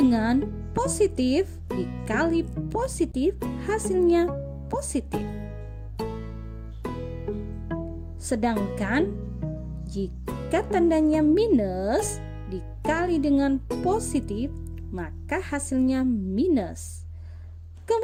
positif dikali positif hasilnya positif. Sedangkan jika tandanya minus dikali dengan positif, maka hasilnya minus.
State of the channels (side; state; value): both; identical; correlation 1.00